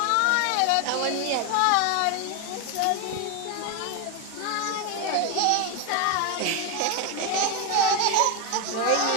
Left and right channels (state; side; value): different; both; correlation 0.02